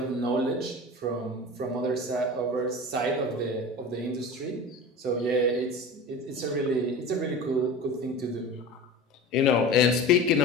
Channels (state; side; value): normal; both; correlation 0.33